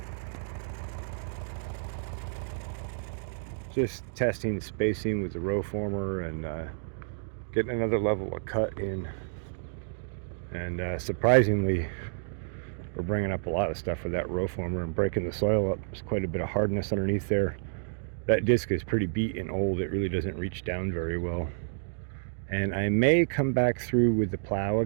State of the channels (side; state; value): left; silent; digital silence